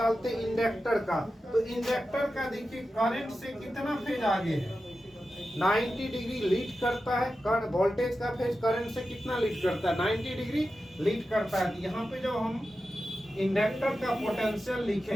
इंडक्टर का। तो इंडक्टर का देखिए करंट से कितना फेज आगे है 90 डिग्री लीड करता है। वोल्टेज का फेज करंट से कितना लीड करता है 90 डिग्री लीड करता है। यहाँ पे जब हम इंडक्टर का पोटेंशियल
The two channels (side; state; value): both; normal; correlation 0.92